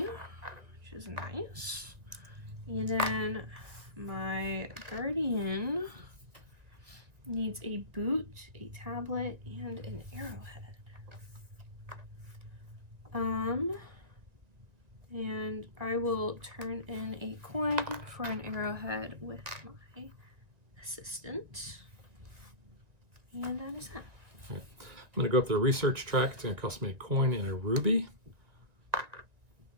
which is nice. And then my guardian needs a boot, a tablet, and an arrowhead. And I will turn in a coin for an arrowhead with my assistant. And that is that. Okay. I'm going to go up the research track. It's going to cost me a coin and a ruby.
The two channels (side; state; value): left; late; 1.9 ms